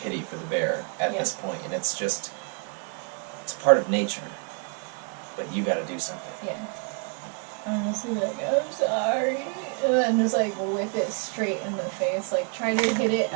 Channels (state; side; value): quieter; left; 37.1 dB